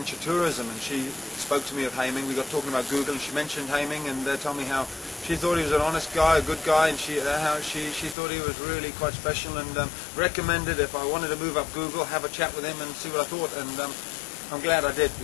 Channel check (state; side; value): drops out; right; at 8.2 s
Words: tourism, and she spoke to me of Haiming. We got talking about Google, and she mentioned Haiming, and told me how she thought he was an honest guy, a good guy, and how she thought he was really quite special, and recommended if I wanted to move up Google, have a chat with him and see what I thought, and I'm glad I did,